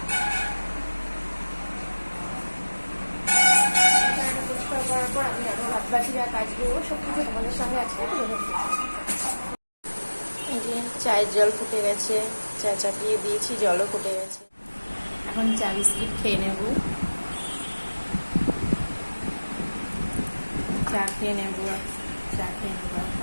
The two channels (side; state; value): both; inverted; correlation -1.00